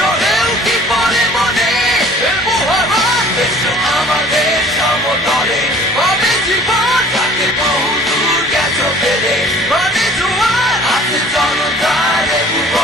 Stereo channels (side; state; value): both; normal; correlation 0.50